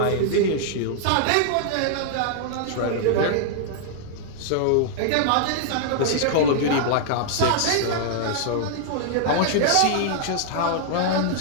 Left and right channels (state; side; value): different; both; correlation -0.01